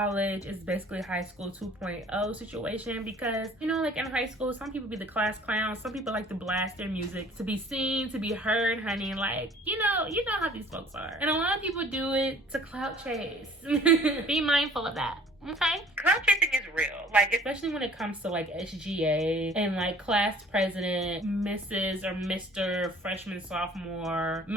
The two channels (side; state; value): both; normal; correlation 0.51